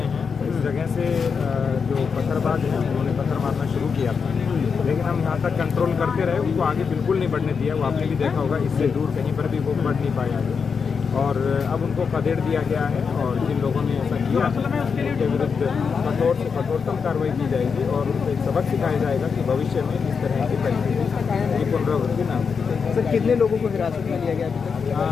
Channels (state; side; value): quieter; right; 5.8 dB